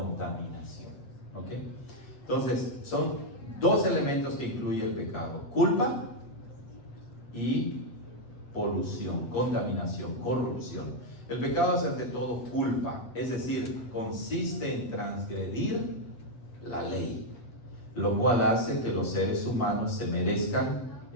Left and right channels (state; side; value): late; right; 8.0 ms